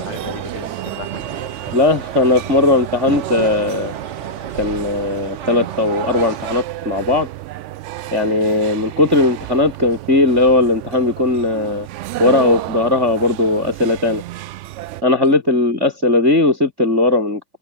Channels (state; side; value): late; left; 3.5 ms